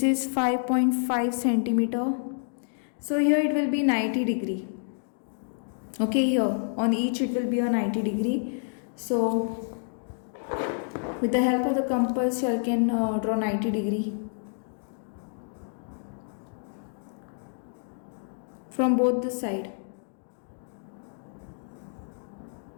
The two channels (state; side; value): silent; right; digital silence